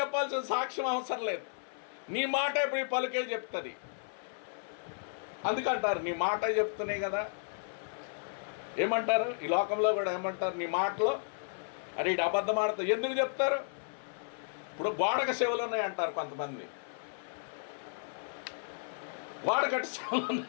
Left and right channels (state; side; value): silent; right; 55 dB below the other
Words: సాక్ష్యం అవసరం లేదు. నీ మాట ఇప్పుడు ఈ పలుకే చెప్తుంది. అందుకంటారు నీ మాట చెప్తున్నాయి కదా. ఏమంటారు ఈ లోకంలో కూడా? ఏమంటారు? నీ మాటలో అరే ఇటు అబద్ధం ఆడతావు. ఎందుకు చెప్తారు? ఇప్పుడు గోడక చెవులు ఉన్నాయి అంటారు కొంతమంది. గోడకట్టు చెవులు